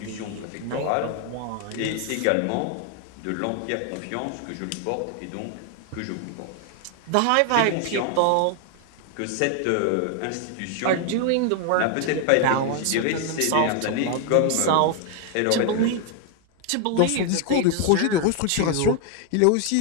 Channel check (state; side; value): different; both; correlation 0.00